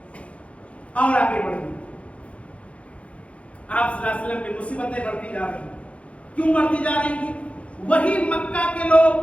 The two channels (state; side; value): late; right; 0.063 ms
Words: اور آگے بڑھیں، آپ صلی اللہ علیہ وسلم کی مصیبتیں بڑھتی جا رہی ہیں۔ کیوں بڑھتی جا رہی ہیں؟ وہی مکہ کے لوگ